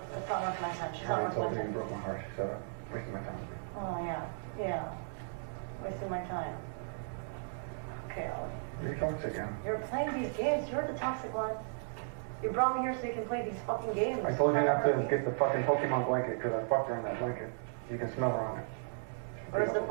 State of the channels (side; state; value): left; silent; digital silence